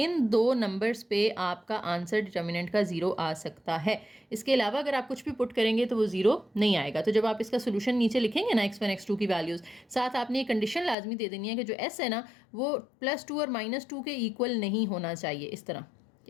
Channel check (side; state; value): right; drops out; at 11.0 s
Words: दो नंबर्स पे आपका आंसर डिटर्मिनेंट का 0 आ सकता है। इसके अलावा अगर आप कुछ भी पुट करेंगे तो वो 0 नहीं आएगा। तो जब आप इसका सोल्यूशन नीचे लिखेंगे ना x1 x2 की वैल्यूज़, साथ आपने एक कंडीशन लाजमी दे देनी है कि जो s है ना वो +2 और -2 के इक्वल नहीं होना चाहिए। इस तरह